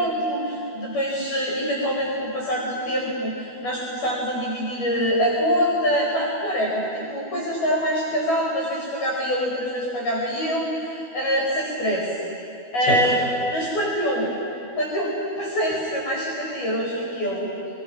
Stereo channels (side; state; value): right; late; 12 ms